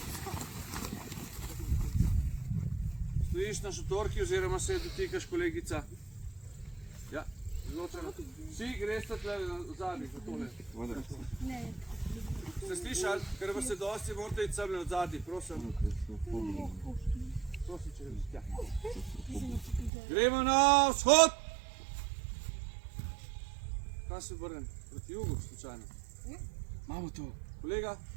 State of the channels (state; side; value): drops out; left; at 19.9 s